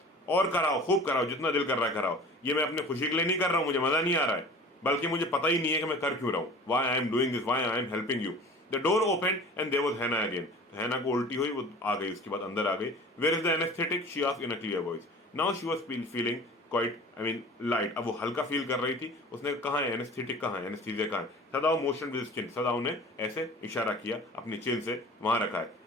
और कराओ, खूब कराओ, जितना दिल कर रहा है कराओ, ये मैं अपने खुशी के लिए नहीं कर रहा हूँ, मुझे मजा नहीं आ रहा है, बल्कि मुझे पता ही नहीं है कि मैं कर क्यों रहा हूँ। Why I am doing this, why I am helping you. The door open and there was Hannah again. Hannah को उल्टी हुई, वो आ गई, उसके बाद अंदर आ गई। Where is the anaesthetic, she asked in a clear voice. Now she was feeling quite, I mean light, अब वो हल्का फील कर रही थी। उसने कहा है एनेस्थेटिक कहाँ है, एनेस्थीसिया कहाँ है। सदाव मोशन विद चिन, सदाव ने ऐसे इशारा किया अपनी चिन से, वहां रखा है।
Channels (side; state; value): both; normal; correlation 0.42